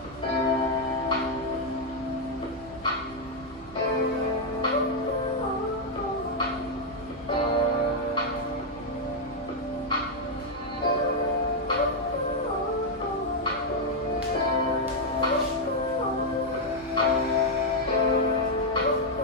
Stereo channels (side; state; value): both; normal; correlation -0.01